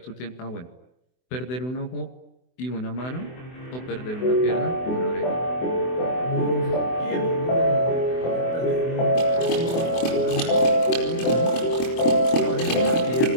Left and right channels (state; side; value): late; right; 24 ms